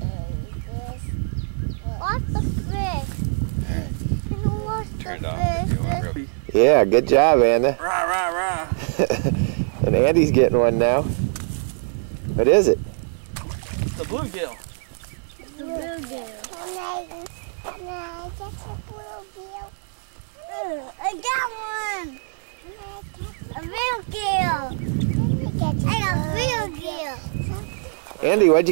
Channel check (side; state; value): left; silent; digital silence